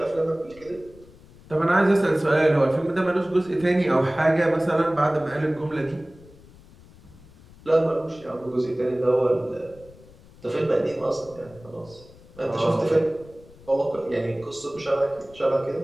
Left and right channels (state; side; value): noise; left; rumble, 23 dB below the sound